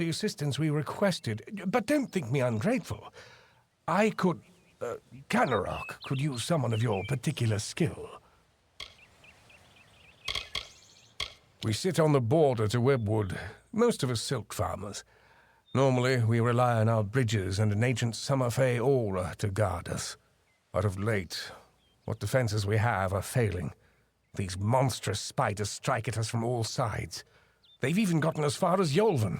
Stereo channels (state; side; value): identical; both; correlation 1.00